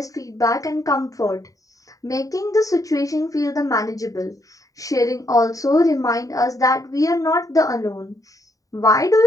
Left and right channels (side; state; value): right; late; 0.16 ms